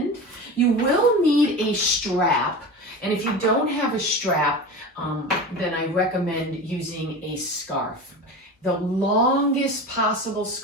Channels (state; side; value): normal; both; correlation 0.30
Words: You will need a strap, and if you don't have a strap, then I recommend using a scarf. The longest possible